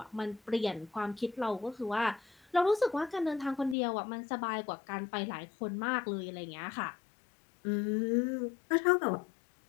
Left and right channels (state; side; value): drops out; right; at 3.8 s